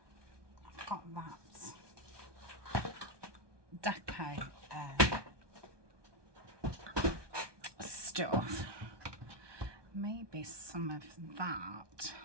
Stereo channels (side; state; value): left; late; 1.2 ms